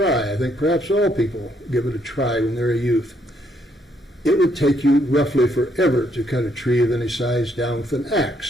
I think perhaps all people give it a try when they're a youth. It would take you roughly forever to cut a tree of any size down with an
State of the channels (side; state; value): both; normal; correlation 0.72